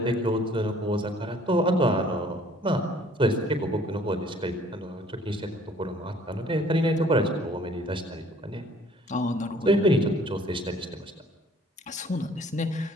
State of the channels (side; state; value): both; normal; correlation 0.56